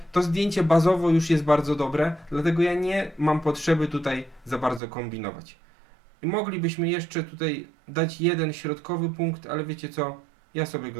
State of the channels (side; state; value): left; drops out; at 4.8 s